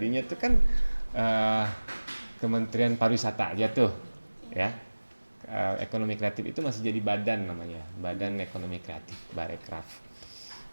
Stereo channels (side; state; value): both; inverted; correlation -1.00